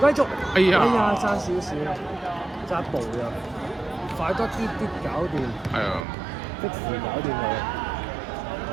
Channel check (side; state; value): left; drops out; at 6.1 s